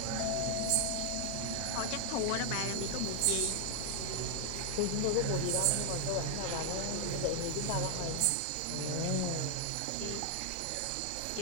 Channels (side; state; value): both; different; correlation 0.00